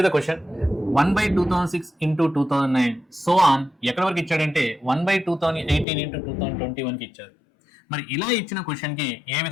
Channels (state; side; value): drops out; right; at 5.9 s